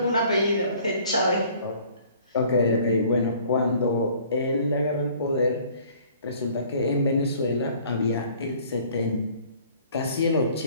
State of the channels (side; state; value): both; inverted; correlation -0.55